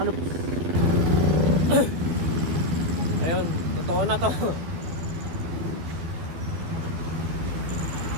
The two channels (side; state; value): left; late; 12 ms